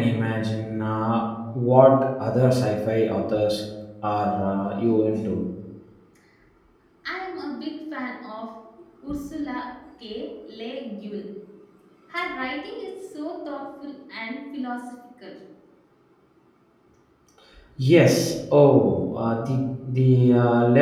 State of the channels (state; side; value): identical; both; correlation 1.00